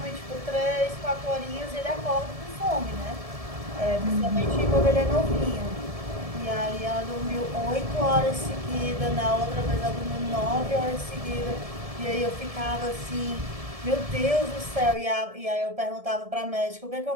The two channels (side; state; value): left; late; 1.7 ms